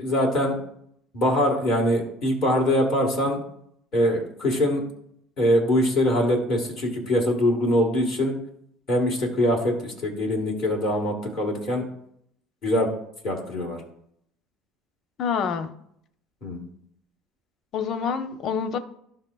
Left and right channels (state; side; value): normal; both; correlation 0.54